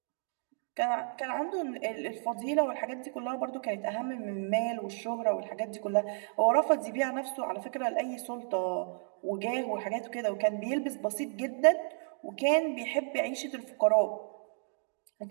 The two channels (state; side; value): silent; left; 56 dB below the other